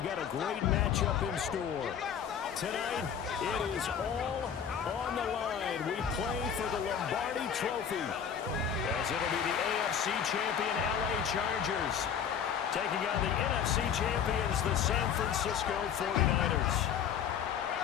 got a great matchup in store. Tonight, it is all on the line. We play for the Lombardi Trophy, as it'll be the AFC champion LA Chargers taking on the NFC champions, the San Francisco 49ers.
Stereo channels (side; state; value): right; quieter; 8.0 dB